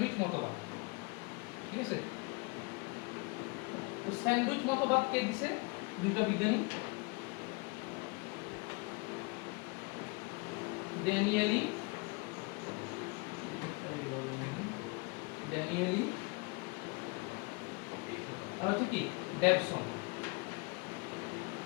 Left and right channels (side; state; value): right; quieter; 29.6 dB